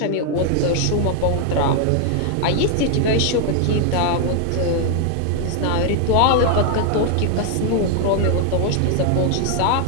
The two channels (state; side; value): different; both; correlation 0.00